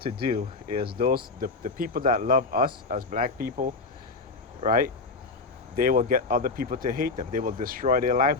do is the people that love us as black people, right? They will get other people to hate them. They will destroy their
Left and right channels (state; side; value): quieter; right; 3.9 dB